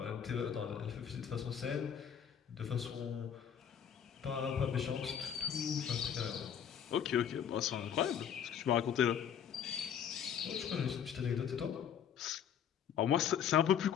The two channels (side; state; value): right; quieter; 8.5 dB